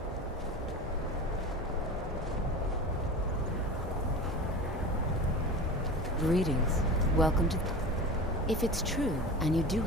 Greetings. Welcome to... If it's true, and you do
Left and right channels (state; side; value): normal; both; correlation 0.32